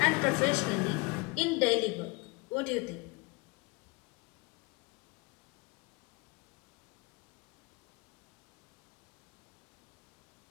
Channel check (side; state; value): right; quieter; 27.3 dB